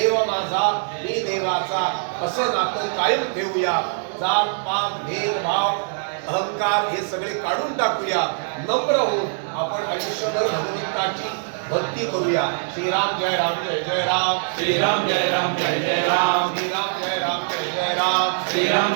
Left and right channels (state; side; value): silent; left; 63 dB below the other